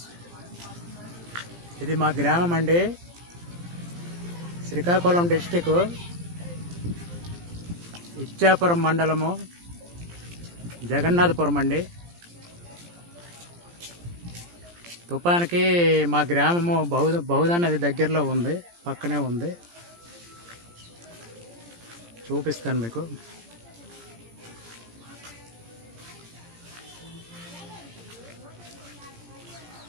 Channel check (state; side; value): late; left; 17 ms